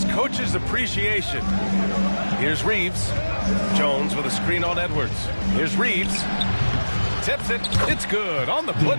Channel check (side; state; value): both; inverted; correlation -1.00